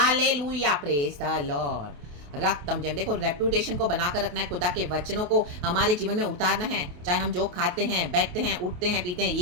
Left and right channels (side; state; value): left; late; 28 ms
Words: praise the Lord. रक्तम Jayam. देखो रेपुटेशन को बनाकर रखना है, खुदा के वचनों को हमारे जीवन में उतारना है, चाहे हम जो खाते हैं, बैठते हैं, उठते हैं, पीते हैं,